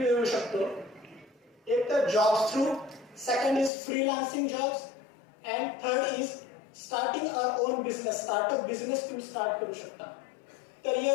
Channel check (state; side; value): drops out; right; at 3.7 s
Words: शकतो. एक तर jobs through, second is freelancing jobs and third is starting our own business. Startup business तुम्ही स्टार्ट करू शकता. तर